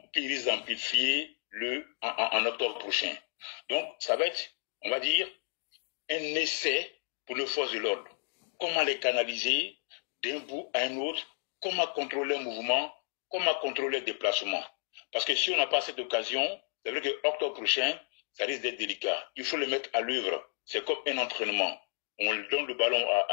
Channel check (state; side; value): silent; right; 56 dB below the other